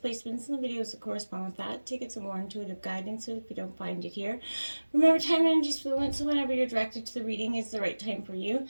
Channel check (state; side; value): inverted; both; correlation -1.00